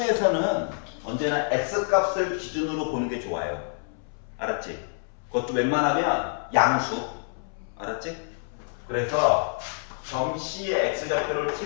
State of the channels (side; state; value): right; silent; 60 dB below the other